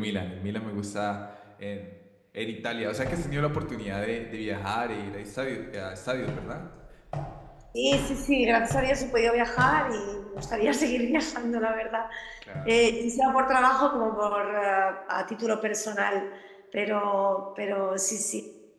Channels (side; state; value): both; identical; correlation 1.00